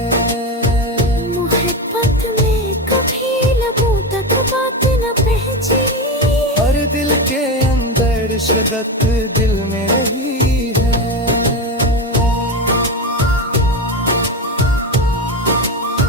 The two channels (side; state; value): both; normal; correlation 0.18